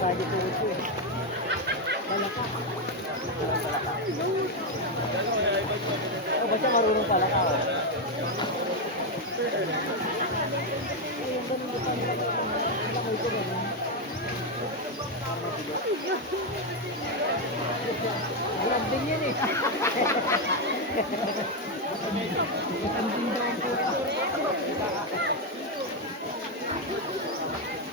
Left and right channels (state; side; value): normal; both; correlation 0.05